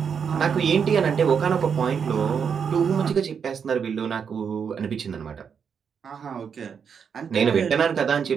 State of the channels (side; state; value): left; quieter; 6.8 dB